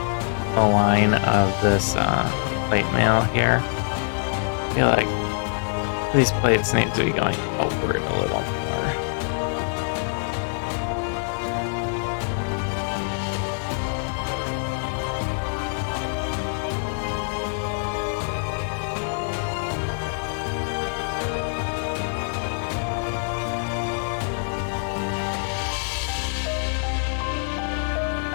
the line of this plate mail here. I feel like these plates need to be going outward a little more.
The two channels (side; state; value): right; silent; 55 dB below the other